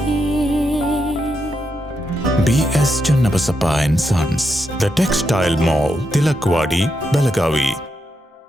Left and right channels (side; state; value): both; normal; correlation 0.83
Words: BS Channabasappa and Sons, The Textile Mall, Tilakwadi, Belagavi.